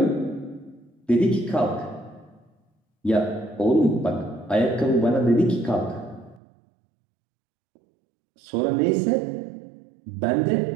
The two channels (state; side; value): drops out; left; at 6.4 s